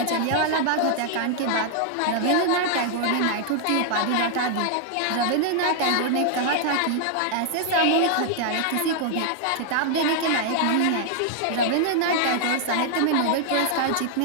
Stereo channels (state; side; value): different; both; correlation 0.00